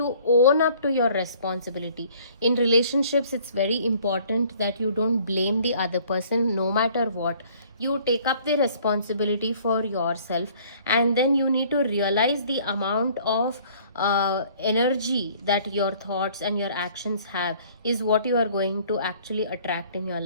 own up to your responsibility. In relationships, it's very important that you don't blame the other person no matter what. You take up the responsibility for yourself, and then you need to realize the amount of energy that your thoughts and your actions have is what you are going to actually attract in your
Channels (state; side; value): inverted; both; correlation -0.56